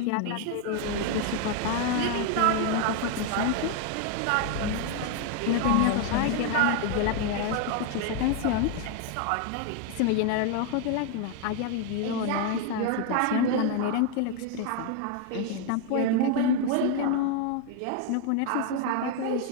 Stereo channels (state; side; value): different; both; correlation 0.01